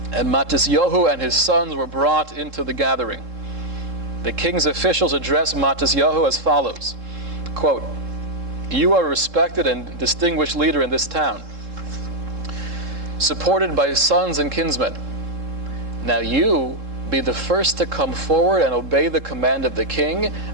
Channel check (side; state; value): left; late; 3.7 ms